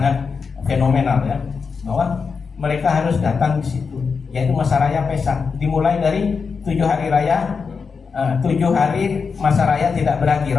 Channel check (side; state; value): right; quieter; 5.3 dB